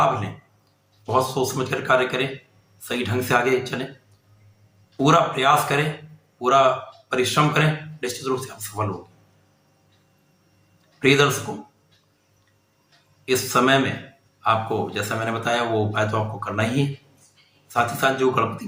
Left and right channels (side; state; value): both; identical; correlation 1.00